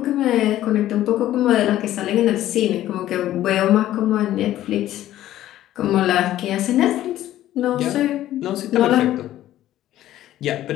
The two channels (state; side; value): quieter; right; 13.5 dB